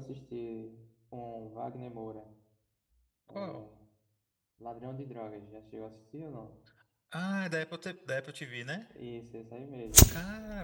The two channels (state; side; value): identical; both; correlation 1.00